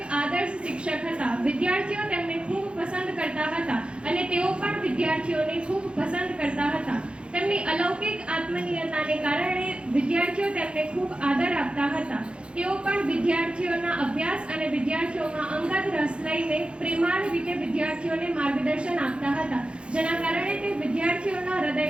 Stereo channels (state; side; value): late; left; 0.057 ms